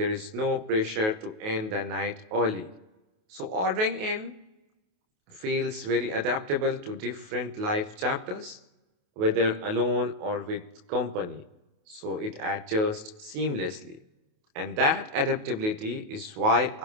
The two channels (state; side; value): late; left; 28 ms